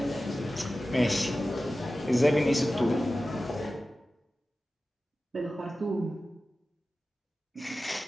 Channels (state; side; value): normal; both; correlation 0.95